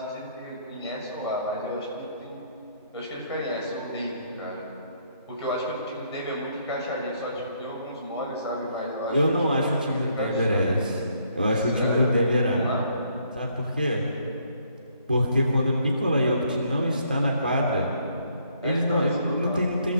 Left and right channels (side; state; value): both; inverted; correlation -0.69